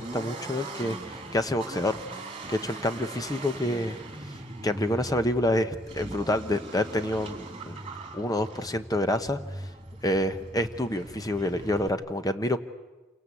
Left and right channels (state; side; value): normal; both; correlation 0.64